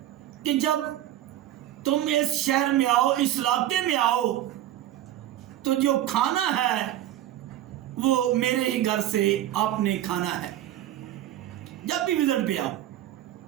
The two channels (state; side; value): quieter; left; 13.2 dB